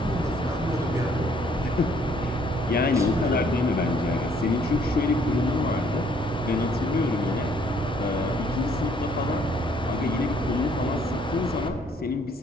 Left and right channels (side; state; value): both; normal; correlation 0.64